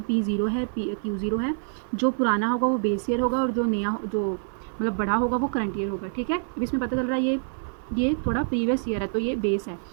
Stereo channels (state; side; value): silent; left; 57 dB below the other